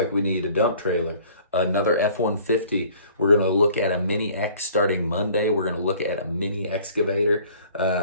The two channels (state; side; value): inverted; both; correlation -0.52